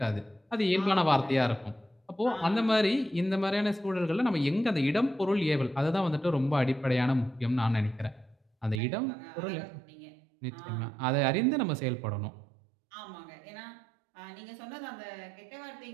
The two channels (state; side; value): drops out; left; at 8.8 s